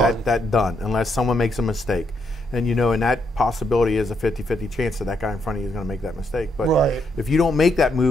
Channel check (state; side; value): normal; both; correlation 0.77